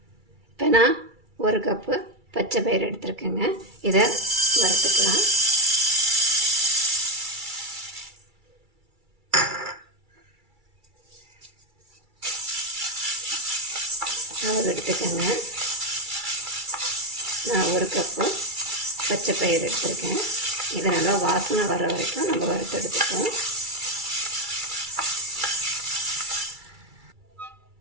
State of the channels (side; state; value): left; late; 2.3 ms